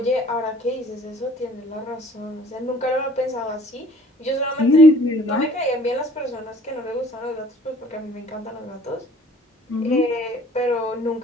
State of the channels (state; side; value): normal; both; correlation 0.53